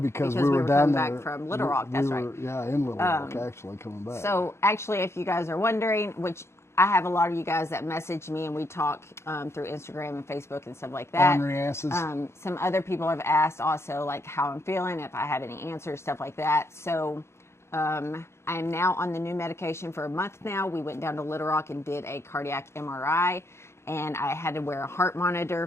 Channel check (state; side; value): late; right; 0.13 ms